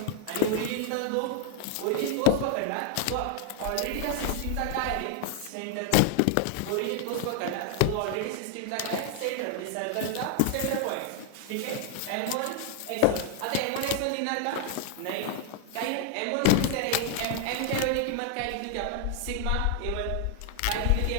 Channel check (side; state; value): both; different; correlation 0.00